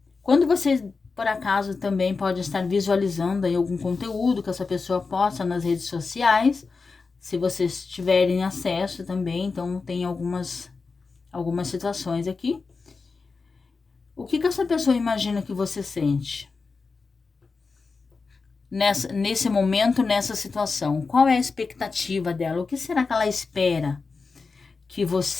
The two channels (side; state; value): right; quieter; 4.4 dB